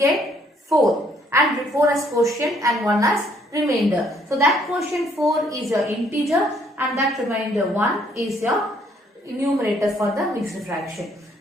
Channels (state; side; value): normal; both; correlation 0.66